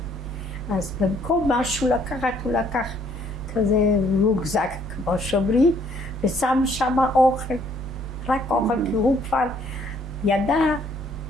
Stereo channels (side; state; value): both; normal; correlation 0.65